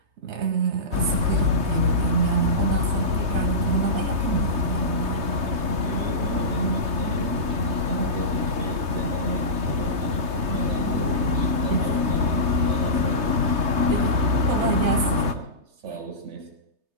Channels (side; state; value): left; late; 3.3 ms